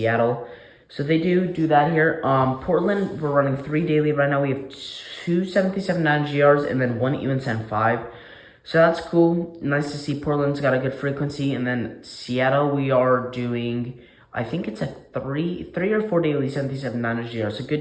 So they do that here. Portland, we're running 3 daily right now. We have 2 737-900ERs and then 1 E175. So that's cool. Nice to see Portland's got a good frequency. And then Seattle, we are doing, I think it's a 3 or 4 daily 737-900ER. So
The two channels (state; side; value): identical; both; correlation 1.00